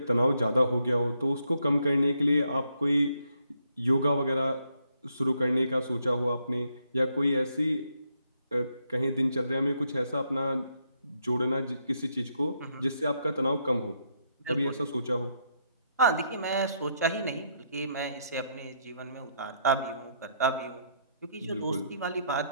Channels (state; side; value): inverted; both; correlation -0.74